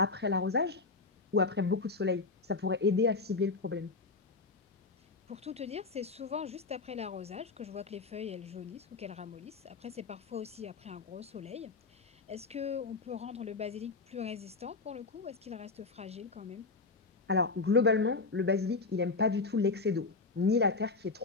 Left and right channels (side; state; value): right; quieter; 4.0 dB